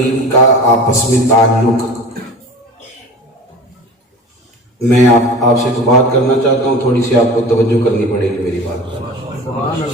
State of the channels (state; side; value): normal; both; correlation 0.36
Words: کا آپس میں تعلق، میں آپ سے تو بات کرنا چاہتا ہوں، تھوڑی سی آپ کو توجہ کرنی پڑے گی میری بات پر.